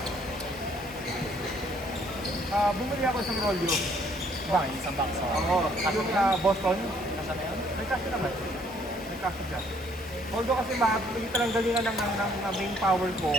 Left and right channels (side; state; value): both; normal; correlation 0.64